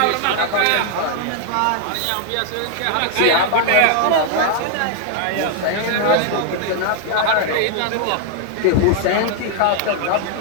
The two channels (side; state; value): both; different; correlation 0.00